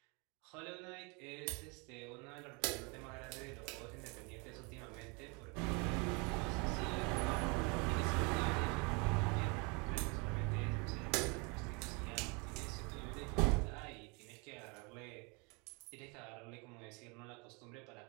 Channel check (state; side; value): quieter; left; 31.0 dB